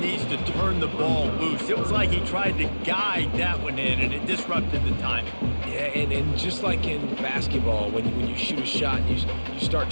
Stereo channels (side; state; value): both; inverted; correlation -1.00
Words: to turn the ball loose. It was like he tried to guide that one in, and it disrupted the timing. Yeah, and just like in basketball, when you shoot a shot and you start